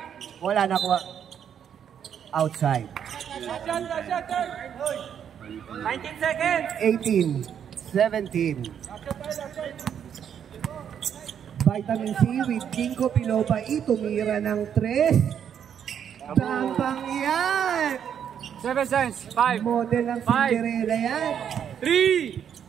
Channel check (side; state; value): left; quieter; 8.6 dB